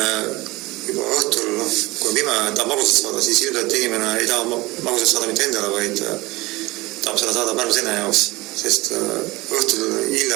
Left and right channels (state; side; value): quieter; left; 21.1 dB